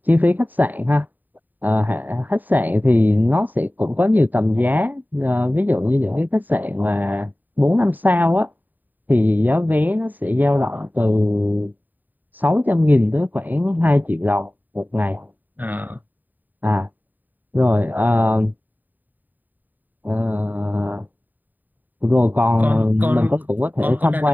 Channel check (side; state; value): left; late; 0.087 ms